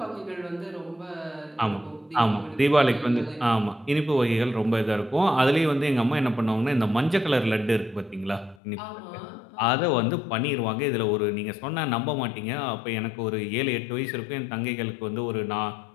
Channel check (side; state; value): right; drops out; at 8.6 s